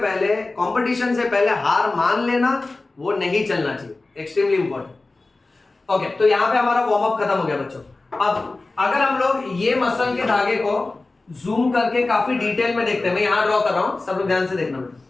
कंपटीशन से पहले हार मान लेना वो नहीं चलना चाहिए। Extremely important. ओके, तो यहां पे हमारा वार्म अप खत्म हो गया बच्चों। अब अगर हम लोग ये मसल के धागे को जूम करके काफी डिटेल में देखते हैं, मैं यहां ड्रॉ कर रहा हूं, सब लोग ध्यान से देखना बेटा।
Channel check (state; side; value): quieter; right; 3.3 dB